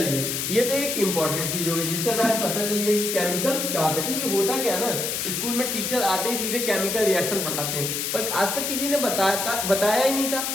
ये तो एक इंपॉर्टेंट चीज होगी जिससे हमें पता चलिए कि केमिकल क्या होता है। क्योंकि होता क्या है ना, स्कूल में टीचर आते ही सीधे केमिकल रिएक्शन पढ़ाते हैं, पर आज तक किसी ने बताया ही नहीं था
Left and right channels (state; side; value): noise; left; hiss, 1 dB below the sound